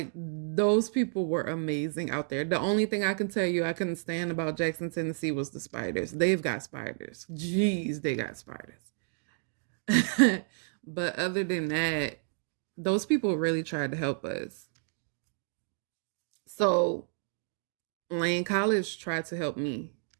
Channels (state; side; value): silent; left; digital silence